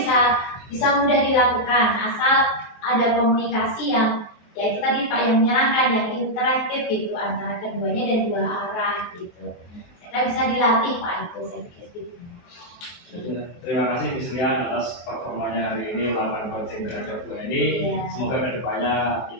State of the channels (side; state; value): right; late; 23 ms